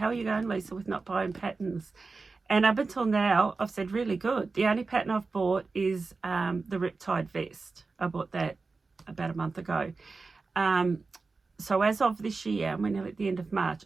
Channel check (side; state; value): left; quieter; 4.1 dB